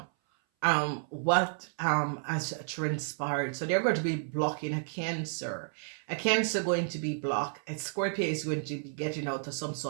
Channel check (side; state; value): left; silent; 57 dB below the other